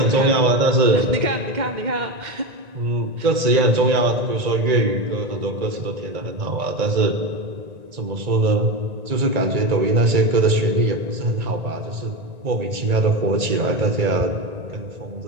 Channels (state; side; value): late; left; 1.9 ms